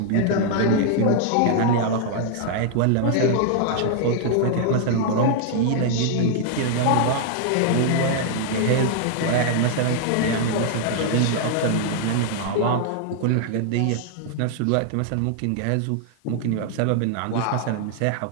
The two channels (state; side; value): different; both; correlation 0.00